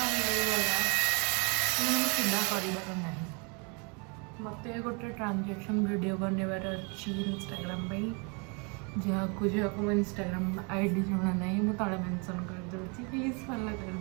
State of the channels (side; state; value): left; quieter; 33.5 dB